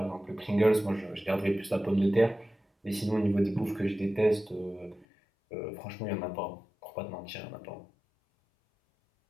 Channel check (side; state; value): right; drops out; at 5.1 s